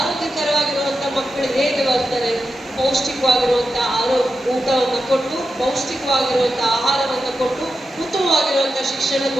ಹೇಗೆ ಬರ್ತಾರೆ, ಪೌಷ್ಟಿಕವಾಗಿರುವಂತ ಊಟವನ್ನು ಕೊಟ್ಟು, ಪೌಷ್ಟಿಕವಾಗಿರುವಂತ ಆಹಾರವನ್ನು ಕೊಟ್ಟು, ಉತ್ತಮವಾಗಿರುವಂತ ಶಿಕ್ಷಣ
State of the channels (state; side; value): normal; both; correlation 0.90